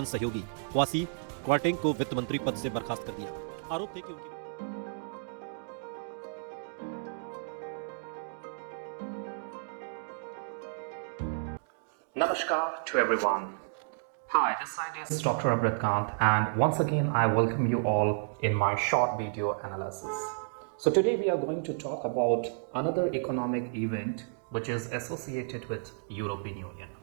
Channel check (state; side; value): silent; left; digital silence